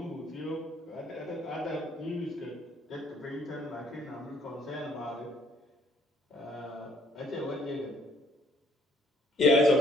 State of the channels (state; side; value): normal; both; correlation 0.65